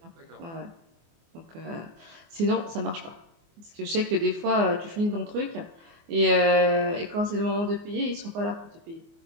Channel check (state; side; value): late; left; 24 ms